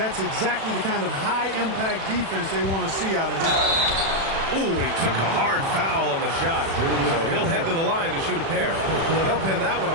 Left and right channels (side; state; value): left; late; 36 ms